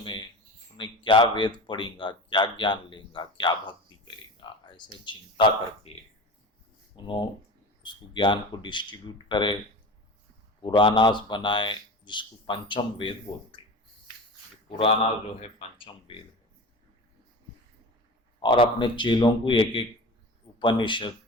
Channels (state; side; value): normal; both; correlation 0.32